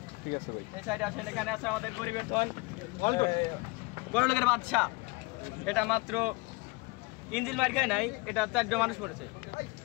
ঠিক আছে ভাই। এই সাইডে আছেন, এখানে আছে আমাদের পরিবর্তন বড় লোকের বাদশা। এটা মাত্র ইঞ্জিন মার খেয়ে নাই, এটা 4 জন মানুষ মরেছে।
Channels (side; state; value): right; quieter; 25.6 dB